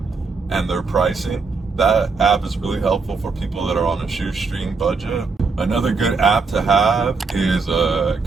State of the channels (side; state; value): left; quieter; 4.4 dB